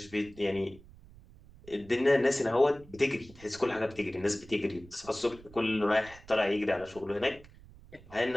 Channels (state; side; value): noise; right; rumble, 21 dB below the sound